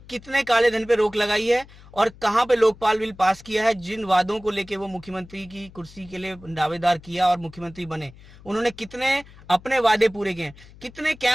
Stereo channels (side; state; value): left; noise; hum, 22 dB below the sound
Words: काले धन पे रोक लगाई है और कहां पे लोकपाल बिल पास किया है? जिन वादों को लेके वो मुख्यमंत्री की कुर्सी के लिए दावेदार किया और मुख्यमंत्री बने, उन्होंने कितने अपने वादे पूरे किए? कितने